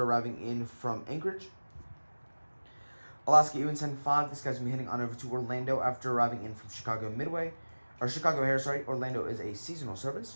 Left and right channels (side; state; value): both; inverted; correlation -1.00